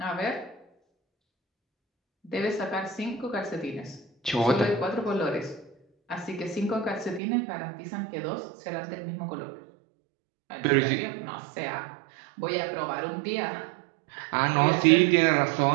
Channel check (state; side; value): drops out; left; at 7.2 s